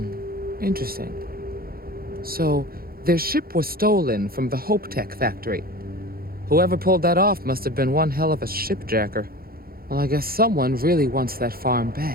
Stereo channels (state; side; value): late; left; 0.43 ms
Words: Interesting. So, their ship was stolen from the Hope Tech factory. Whoever pulled that off must have been one hell of a shipjacker. Well, I guess someone really wants that farm